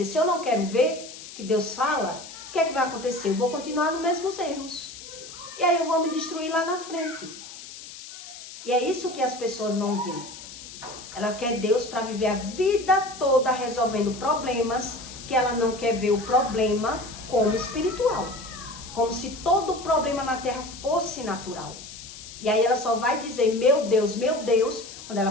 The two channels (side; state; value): left; noise; hiss, 14 dB below the sound